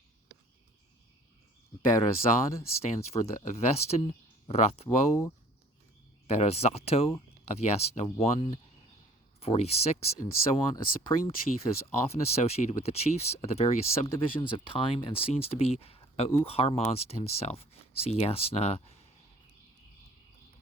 Berazad stands for the Avestan Rathwo Berazato of Yasna 1:46, and so on. A supreme chief is often associated with the chiefs of the various subdivisions of time and seems to be Au Harmazd himself. See Yasna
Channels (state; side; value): normal; both; correlation 0.53